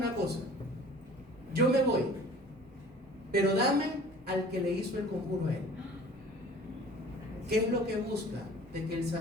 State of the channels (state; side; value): normal; both; correlation 0.47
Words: cosa. Yo me voy, pero dame al que le hizo el conjuro a él. ¿Qué es lo que busca? De que el